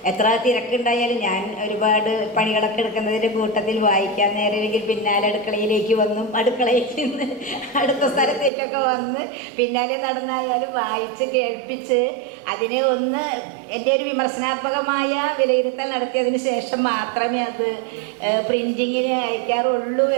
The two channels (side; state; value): left; drops out; at 8.5 s